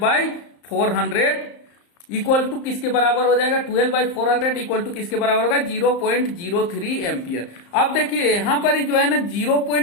इक्वल टू किसके बराबर हो जाएगा 12/400 इक्वल टू किसके बराबर होगा 0.03 एम्पियर। अब देखिए यहाँ पर ही जो है ना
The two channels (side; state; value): right; late; 34 ms